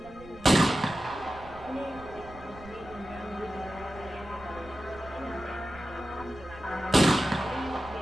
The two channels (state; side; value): noise; right; rumble, 18 dB below the sound